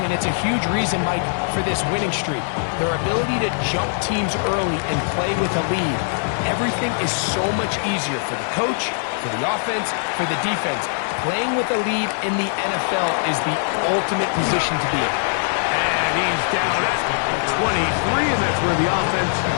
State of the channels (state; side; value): silent; right; digital silence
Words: and it's a huge reason, Mike, for this winning streak. Their ability to jump teams early and play with a lead. Everything is so much easier for the coach, for the offense, for the defense. Playing with a lead in the NFL is the ultimate position to be in. And he's down at 23, and that's where the offense